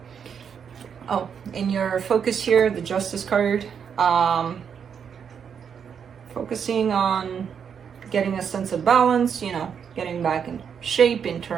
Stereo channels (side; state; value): left; quieter; 7.3 dB